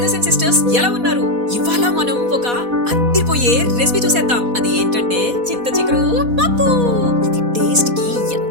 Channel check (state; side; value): late; left; 4.1 ms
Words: and sisters, ఎలా ఉన్నారు? ఇవాళ మనం ఒక అద్దిరిపోయే రెసిపీ చూసేద్దాం. అది ఏంటంటే చింత చిగురు పప్పు. ఇది టేస్ట్ కి